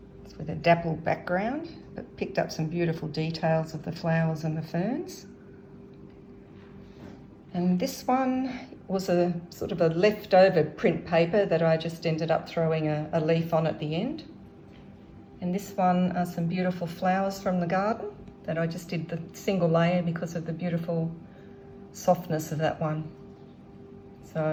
It's with a dappled background, but picked up some beautiful details of the flowers and the ferns. And this one was a sort of a leftover print paper that I just ended up throwing a leaf on at the end. And this one are some beautiful flowers from the garden that I just did the single layer because of the beautiful softness of that one.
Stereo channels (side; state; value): both; identical; correlation 1.00